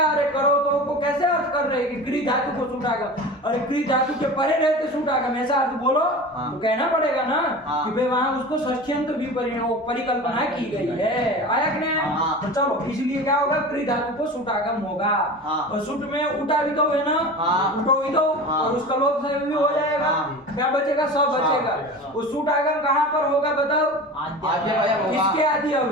अरे करो तो को कैसे अर्थ कर रहे हैं कि क्री धातु को सूट आगम? अरे क्री धातु के परे रहते सूट आगम, ऐसा अर्थ बोलो। हाँ। तो कहना पड़ेगा ना हाँ। कि भाई वहां उसको षष्ठ्यंत भी परिकल्पना की गई है। आया कि नहीं आया? हाँ। तो चलो, इसलिए क्या होगा? क्री धातु को सूट आगम होगा। हाँ। और सूट में उठा भी तो है ना, हाँ। उठो भी तो, हाँ। और उसका लोप से भी हो जाएगा। हाँ। क्या बचेगा? सब बचेगा। हाँ। वो सूट आगम कहाँ पर होगा बताओ? आद्य अवयव होगा। किसके आदि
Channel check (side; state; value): both; normal; correlation 0.33